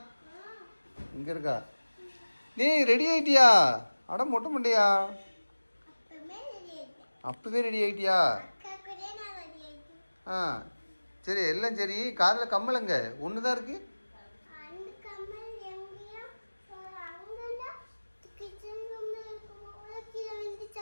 இங்க இருக்கா நீ ரெடி ஆயிட்டியா அட மொட்டை மண்டையா அப்பவே ரெடி ஆயிட்டியா ஆ சரி எல்லாம் சரி காதில் கம்மலங்க ஒன்று தான் இருக்கு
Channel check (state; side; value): inverted; both; correlation -1.00